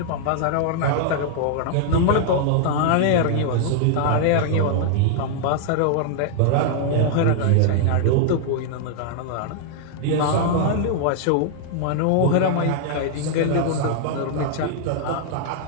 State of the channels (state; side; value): different; both; correlation -0.01